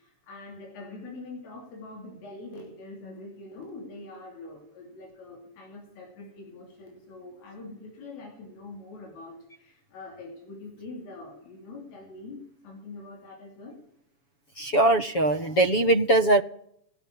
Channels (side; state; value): right; late; 7.1 ms